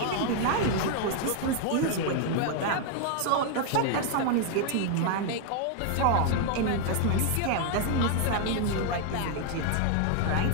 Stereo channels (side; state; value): both; different; correlation 0.00